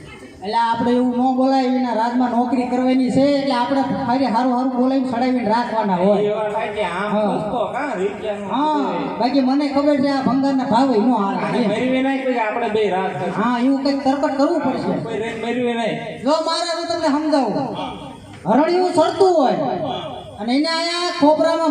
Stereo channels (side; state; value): both; identical; correlation 1.00